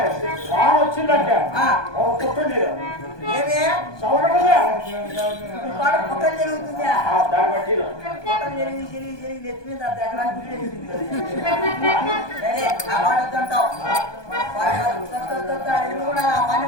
వచ్చిందంటే కుట్టండి ఏమి సవడగా పక్కన జరుగుతుందా దాన్ని బట్టి పక్కన జరిగి నెత్తి మీద వాడొద్దంటావు కూడా పని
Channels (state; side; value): late; right; 1.2 ms